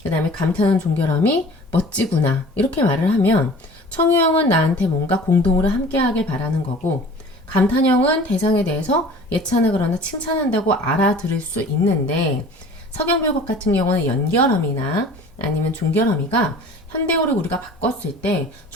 그 다음에 감탄한 종결어미 멋지구나 이렇게 말을 하면 청유형은 나한테 뭔가 공동으로 함께하길 바라는 거고, 감탄형은 대상에 대해서 예찬하거나 칭찬한다고 알아들을 수 있는데, 서경별곡 같은 경우는 연결어미나 아니면 종결어미가 현대어를 우리가 바꿨을 때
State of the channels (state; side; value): normal; both; correlation 0.45